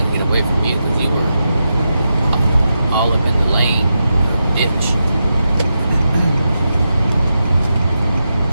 get away from you because you were all up in the lane, ditch.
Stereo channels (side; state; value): both; inverted; correlation -0.88